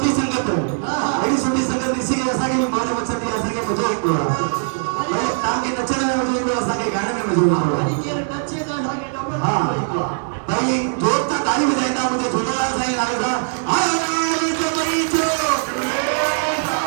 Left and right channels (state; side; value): silent; left; digital silence